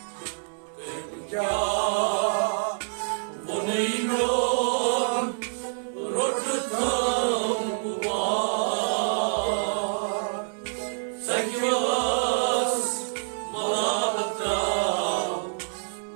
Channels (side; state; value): left; silent; digital silence